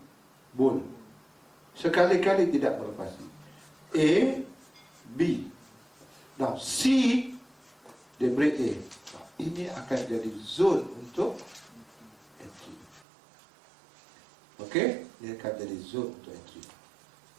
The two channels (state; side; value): drops out; left; at 13.1 s